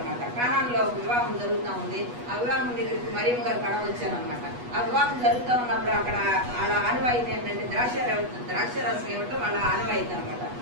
కానానులో ఒక వివాహం జరుగుతూ ఉంది. ఆ వివాహం దగ్గరికి మరియమ్మ గారు కడ వచ్చారనమాట. ఆ వివాహం జరుగుతూ ఉన్నప్పుడు అక్కడ వాళ్ళ ఆనవాయితీ ఏంటంటే ద్రాక్షరసం ఇవ్వటం వాళ్ళ ఆనవాయితీ అనమాట.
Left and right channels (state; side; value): late; left; 8.2 ms